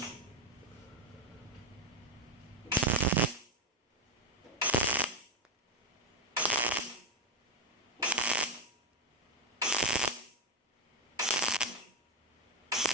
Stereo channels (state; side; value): normal; both; correlation 0.07